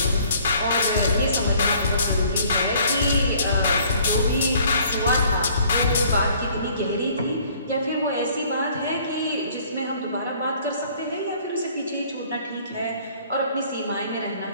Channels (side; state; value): both; inverted; correlation -0.57